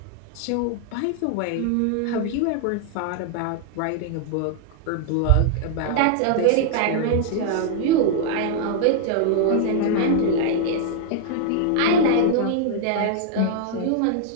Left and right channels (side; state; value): both; different; correlation -0.01